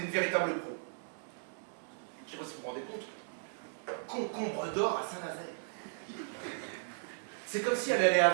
une véritable pro. Je sais pas si vous vous rendez compte. Concombre d'or à Saint-Nazaire. C'est comme si elle allait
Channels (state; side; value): silent; left; digital silence